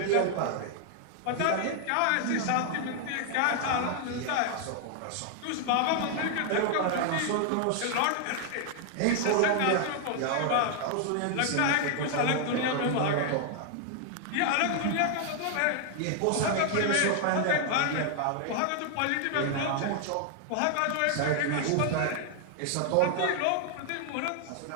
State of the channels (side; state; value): both; different; correlation 0.00